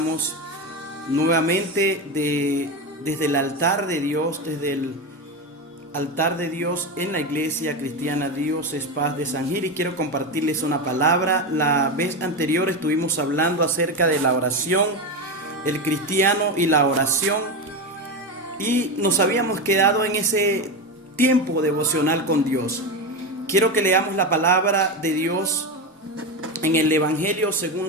nuevamente desde el altar de Dios, desde el altar de Dios en la Iglesia Cristiana Dios es Paz de San Gil, y quiero compartirles una palabra. La vez anterior estuvimos hablando acerca de la oración, el cristiano y la oración. Y nos habíamos quedado en ese tiempo devocional con Dios. Quiero que leamos la palabra de Dios en el Evangelio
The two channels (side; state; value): both; normal; correlation 0.16